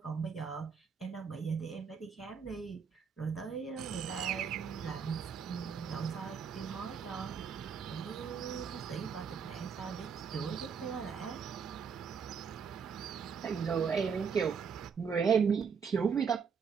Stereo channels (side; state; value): left; quieter; 6.3 dB